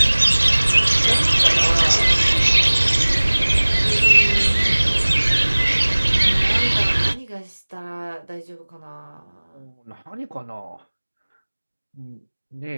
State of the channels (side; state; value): both; inverted; correlation -1.00